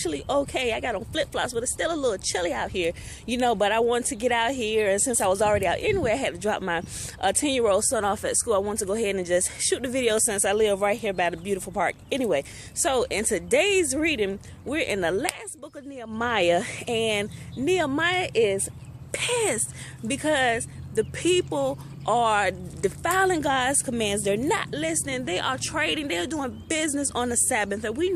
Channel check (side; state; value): both; identical; correlation 1.00